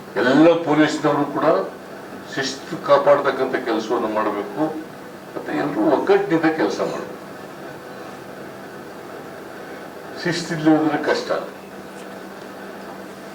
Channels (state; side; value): identical; both; correlation 1.00